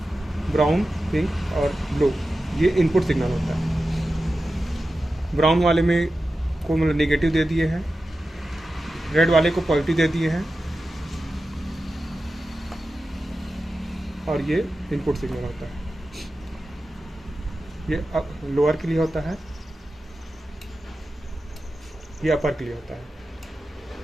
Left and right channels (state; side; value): normal; both; correlation 0.92